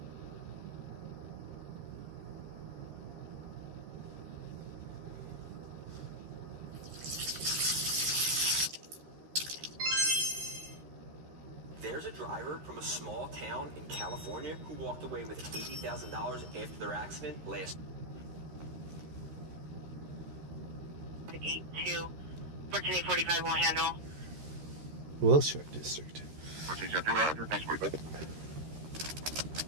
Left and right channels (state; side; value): late; left; 13 ms